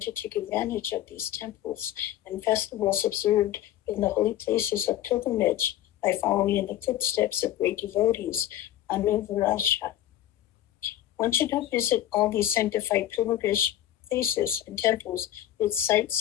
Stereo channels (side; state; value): right; quieter; 12.7 dB